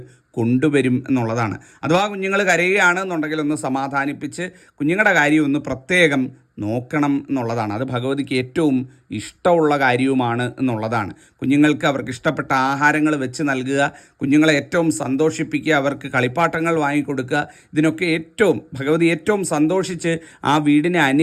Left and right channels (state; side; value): identical; both; correlation 1.00